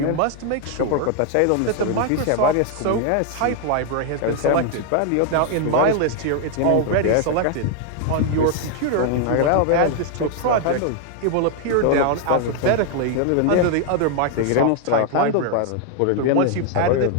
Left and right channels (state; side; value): different; both; correlation 0.00